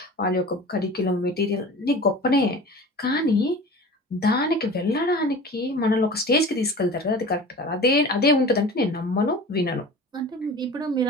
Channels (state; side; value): normal; both; correlation 0.38